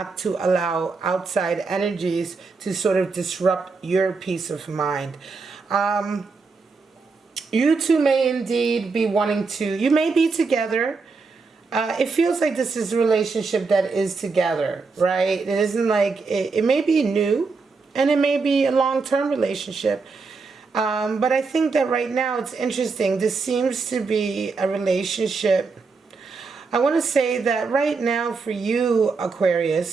to allow outside energies to sort of disrupt your peace of mind. You two may indeed be wanting to, you may be together. It feels like this is a relationship that is together, right? It isn't like, it may be new and it may be a long-term relationship. But I think that right now it's interesting. This seems to be a relationship. I want to say that right now for you,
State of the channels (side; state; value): left; quieter; 4.5 dB